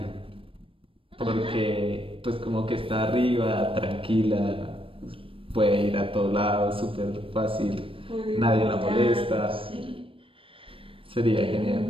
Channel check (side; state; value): left; late; 0.26 ms